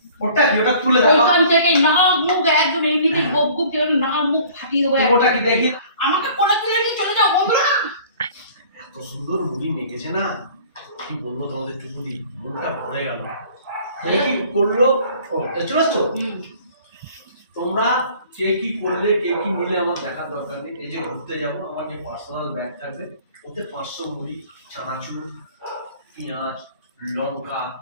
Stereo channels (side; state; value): both; inverted; correlation -0.50